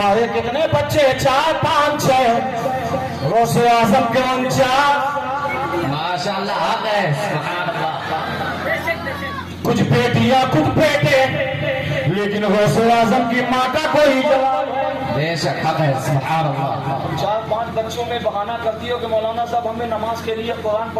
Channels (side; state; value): both; identical; correlation 1.00